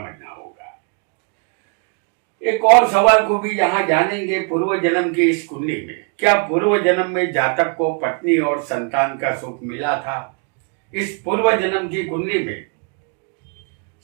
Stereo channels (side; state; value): left; quieter; 38.0 dB